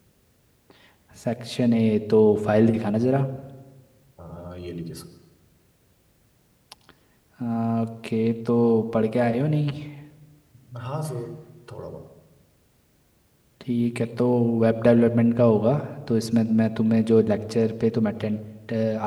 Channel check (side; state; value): both; identical; correlation 1.00